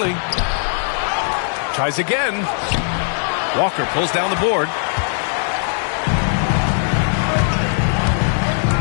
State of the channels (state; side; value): silent; right; digital silence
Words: Tries again. Walker pulls down the board.